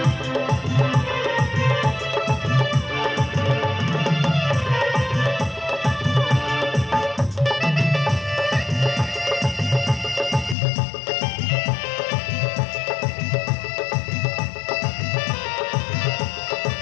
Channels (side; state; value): right; drops out; at 10.6 s